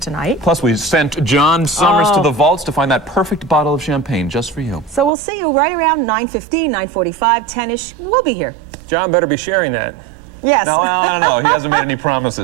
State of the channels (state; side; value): drops out; left; at 5.1 s